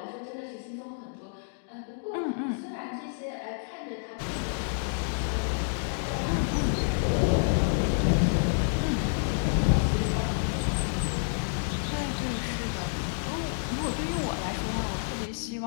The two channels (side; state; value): right; silent; digital silence